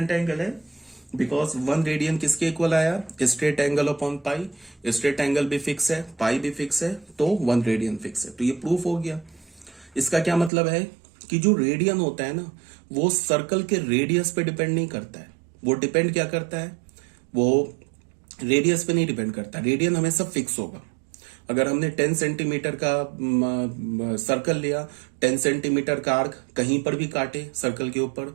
एंगल है? बिकॉज 1 रेडियन किसके इक्वल आया? Straight angle upon pi. Straight angle भी फिक्स है, पाई भी फिक्स है, तो 1 रेडियन फिक्स है। तो ये प्रूफ हो गया। इसका क्या मतलब है कि जो रेडियन होता है ना, वो सर्कल के रेडियस पे डिपेंड नहीं करता है। वो डिपेंड क्या करता है? वो रेडियस पे नहीं डिपेंड करता। रेडियन हमेशा फिक्स होगा। अगर हमने 10 सेंटीमीटर का सर्कल लिया, 10 सेंटीमीटर का आर्क कहीं पर भी काटे सर्कल के ऊपर,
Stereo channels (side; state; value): left; drops out; at 10.5 s